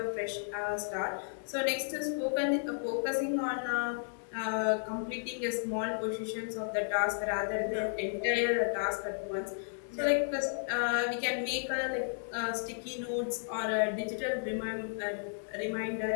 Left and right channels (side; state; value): right; silent; digital silence